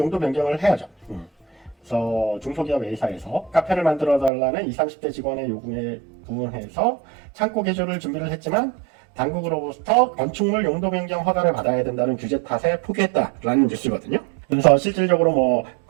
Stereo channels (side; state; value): left; drops out; at 4.3 s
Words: 변경을 해야죠. 그래서 중소기업 A사에서 카페를 만들어 달라는 20, 30대 직원의 요구에 부응해서 창고 개조를 준비를 했지만 당국으로부터 건축물 용도 변경 허가를 받아야 된다는 규제 탓에 포기했다라는 뉴스거든요. 그래서 실질적으로 뭐